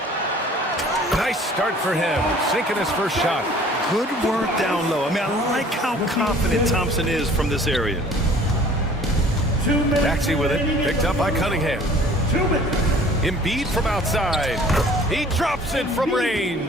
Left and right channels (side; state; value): both; normal; correlation 0.51